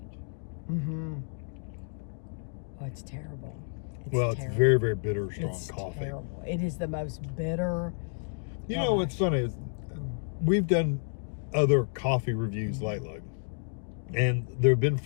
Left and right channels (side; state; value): right; silent; digital silence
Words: Oh, it's terrible. It's very, very bitter, strong It's coffee. terrible. It is the most bitter. You know what's funny is we've done other coffee reviews lately, and there have been